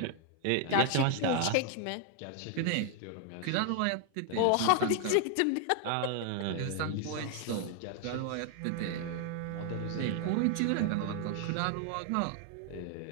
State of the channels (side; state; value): both; different; correlation 0.00